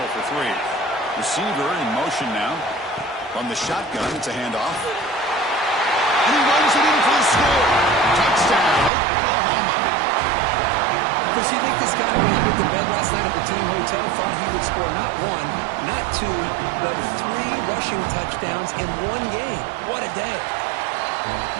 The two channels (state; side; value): drops out; left; at 8.9 s